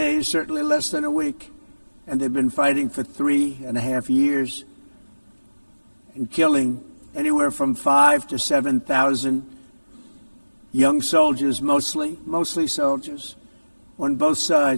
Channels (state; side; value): inverted; both; correlation -1.00